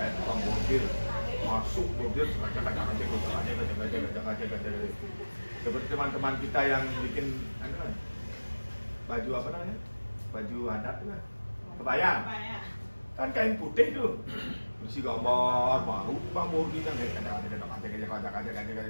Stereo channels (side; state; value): both; inverted; correlation -1.00